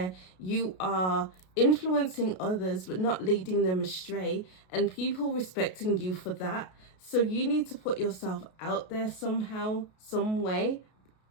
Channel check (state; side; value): late; right; 33 ms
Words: you are influencing others but not leading them astray, and people respecting you for that. So you need to put yourself out there somehow, some way,